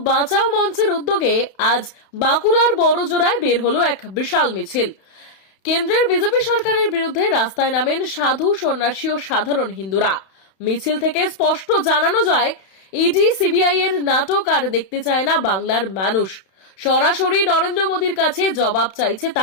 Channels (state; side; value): late; right; 31 ms